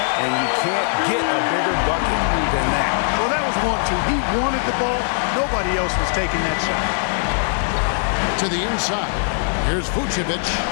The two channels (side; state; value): right; silent; 65 dB below the other